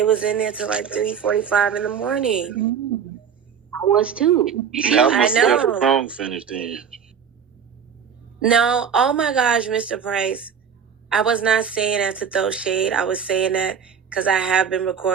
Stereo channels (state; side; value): quieter; left; 7.3 dB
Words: was in there till like 3:45 in the morning. I was too. I know. The song finished then. No, oh my gosh, Mr. Price. I was not saying that to throw shade. I was saying that because I have been